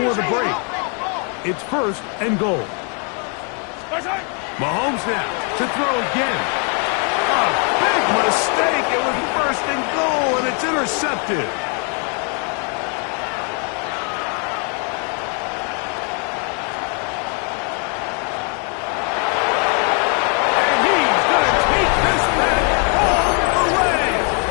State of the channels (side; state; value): right; quieter; 38.6 dB